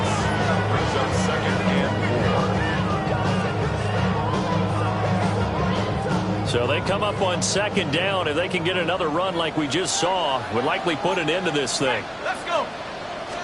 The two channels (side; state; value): both; identical; correlation 1.00